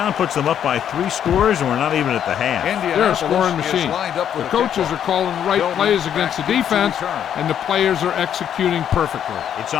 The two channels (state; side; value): quieter; right; 9.4 dB